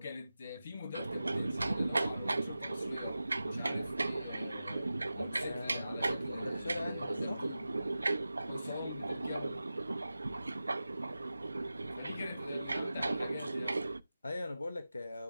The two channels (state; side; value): inverted; both; correlation -0.94